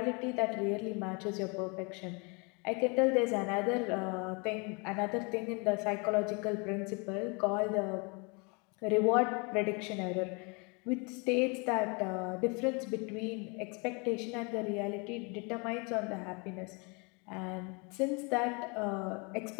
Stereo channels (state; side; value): quieter; right; 31.6 dB